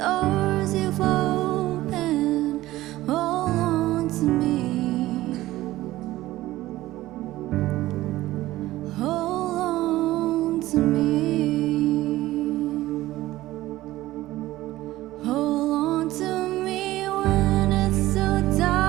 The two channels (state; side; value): quieter; left; 16.4 dB